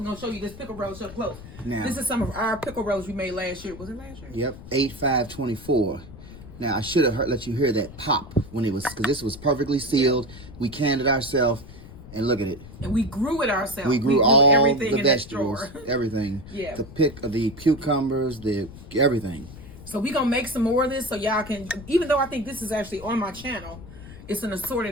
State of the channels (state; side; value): noise; left; rumble, 16 dB below the sound